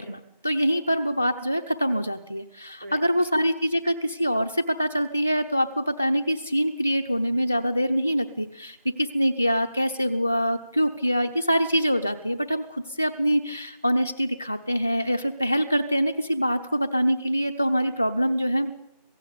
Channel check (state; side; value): inverted; both; correlation -0.93